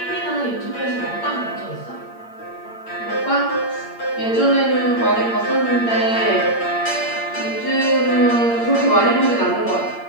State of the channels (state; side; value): late; right; 8.7 ms